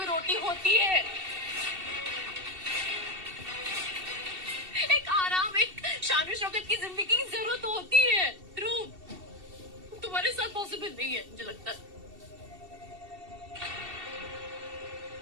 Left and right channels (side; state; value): left; late; 2.7 ms